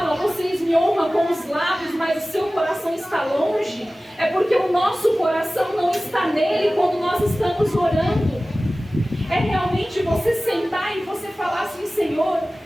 vocês me honram com os lábios, mas o seu coração está longe, é porque o nosso coração não está nele quando nós estamos orando. É realmente você sentar e você falar assim: Senhor,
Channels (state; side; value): normal; both; correlation 0.97